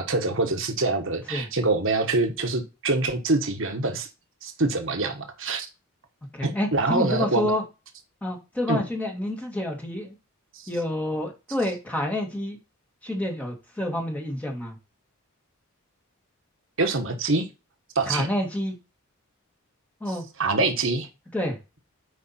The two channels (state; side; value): normal; both; correlation 0.25